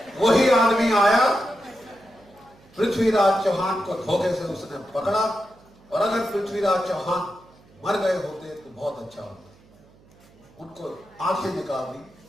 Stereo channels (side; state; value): right; noise; hum, 28 dB below the sound